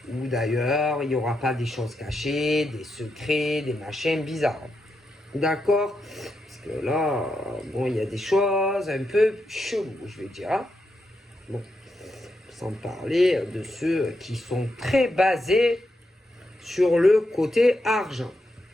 Ou d'ailleurs, il n'y aura pas des choses cachées, des secrets, des machins bizarres. D'accord? Parce que là, bon, il y a des choses un peu cheloues, je vais dire. Hein? Bon, sans parler de ceux qui sont très basés sur le côté argent.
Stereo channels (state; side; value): normal; both; correlation 0.84